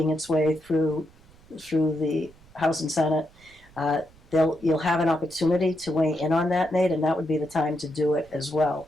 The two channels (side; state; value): right; noise; rumble, 26 dB below the sound